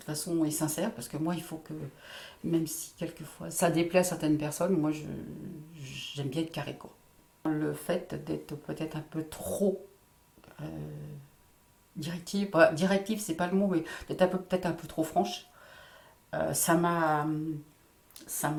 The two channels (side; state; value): both; identical; correlation 1.00